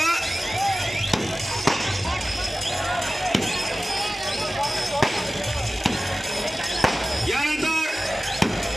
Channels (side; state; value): both; normal; correlation 0.96